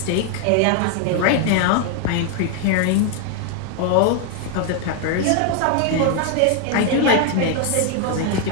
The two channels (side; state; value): both; different; correlation 0.00